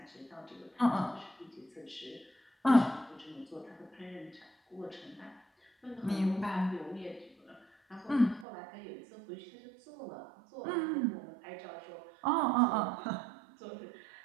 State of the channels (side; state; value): left; drops out; at 8.5 s